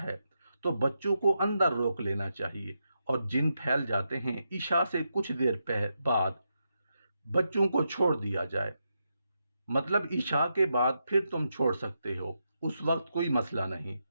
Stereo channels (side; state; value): both; inverted; correlation -0.85